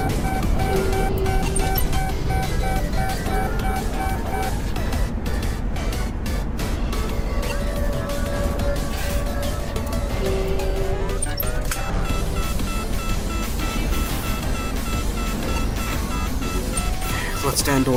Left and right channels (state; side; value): identical; both; correlation 1.00